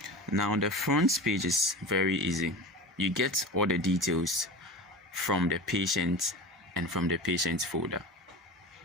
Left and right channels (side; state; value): both; normal; correlation 0.31